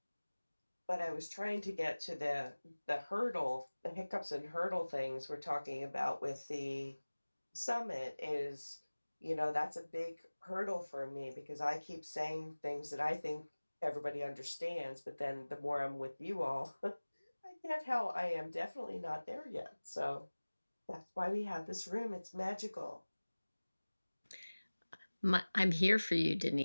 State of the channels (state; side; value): inverted; both; correlation -1.00